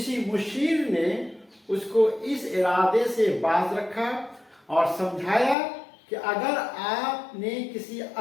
मुशीर ने उसको इस इरादे से बाज रखा और समझाया कि अगर आपने किसी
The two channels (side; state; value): right; drops out; at 5.6 s